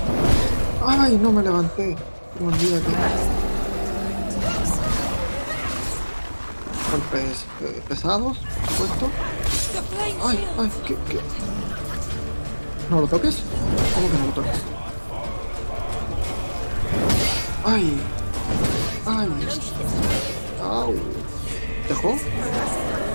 Ay, no me levanté. Me olvidé que... Golpes pesados, supuesto. Ay, ay, ¿qué? ¿No lo toques? ¿Cómo que no lo toques? Ay, ay, au, ¿dejó?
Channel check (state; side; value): inverted; both; correlation -1.00